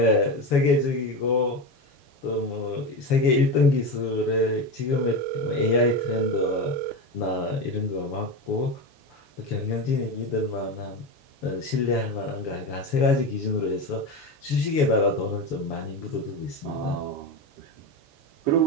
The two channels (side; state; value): right; late; 7.1 ms